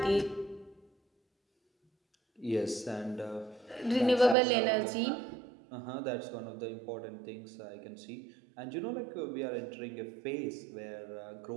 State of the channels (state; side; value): drops out; left; at 4.4 s